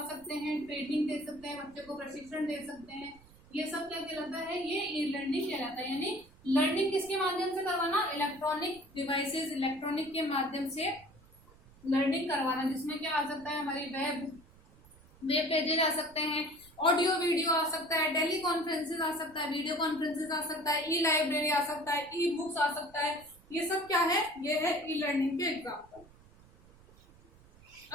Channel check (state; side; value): noise; right; rumble, 25 dB below the sound